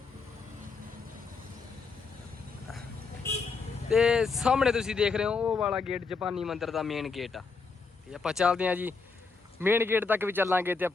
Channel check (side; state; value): right; quieter; 4.6 dB